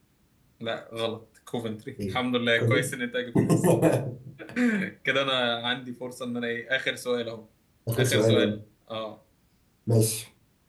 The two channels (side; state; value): both; identical; correlation 1.00